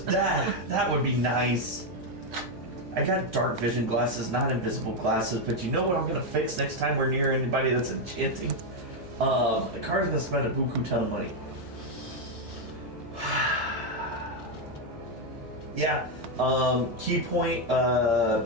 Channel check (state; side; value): noise; left; hum, 17 dB below the sound